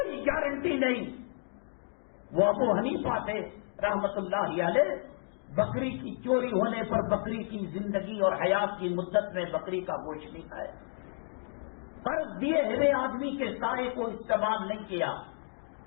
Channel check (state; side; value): silent; right; 57 dB below the other